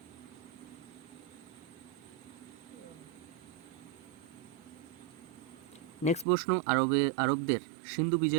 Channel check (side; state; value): left; drops out; at 6.2 s